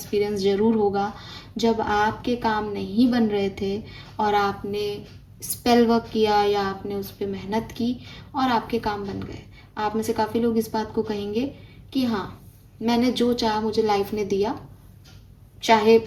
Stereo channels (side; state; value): both; identical; correlation 1.00